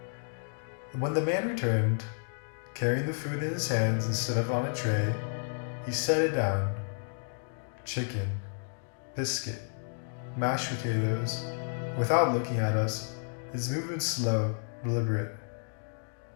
When the man returned, carrying the food in his hands instead of on a tray, he set it down. Chicken, biscuit, mashed potatoes. Without looking at us, his movement slow, deliberate.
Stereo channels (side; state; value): right; silent; digital silence